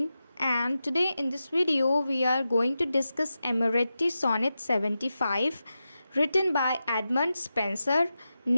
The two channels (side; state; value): both; inverted; correlation -0.91